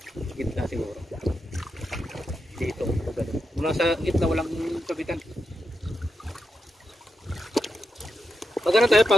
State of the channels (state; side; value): normal; both; correlation 0.86